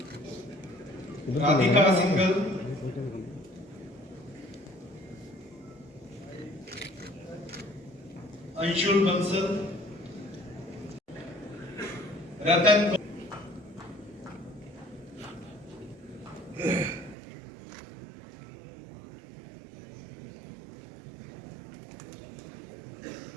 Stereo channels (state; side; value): drops out; left; at 17.2 s